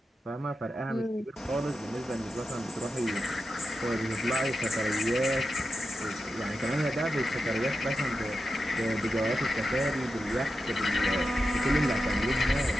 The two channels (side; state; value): both; normal; correlation 0.90